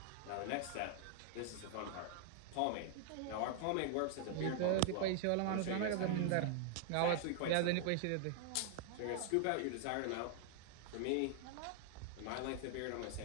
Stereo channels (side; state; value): both; different; correlation 0.00